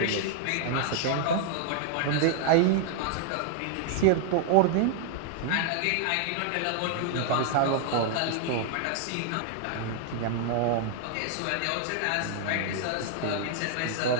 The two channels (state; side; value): different; both; correlation 0.00